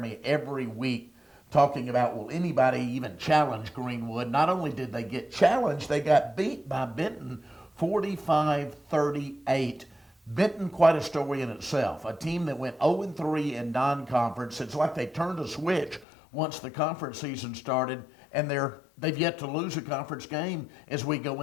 every week talking about, will anybody even challenge Greenwood? Not only did they get challenged, they got beat by Benton 45-38. Benton, quite a story in itself. A team that went 0-3 in non-conference. It's like they turned a switch once the conference season started, and they've yet to lose a conference game as we go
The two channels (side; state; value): right; drops out; at 16.1 s